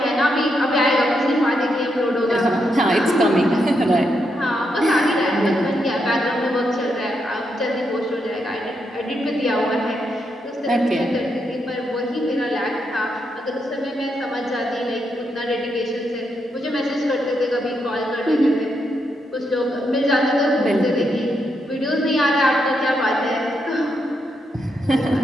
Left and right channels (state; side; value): normal; both; correlation 0.81